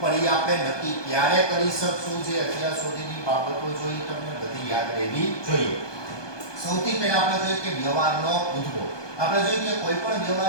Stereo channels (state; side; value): late; right; 1.2 ms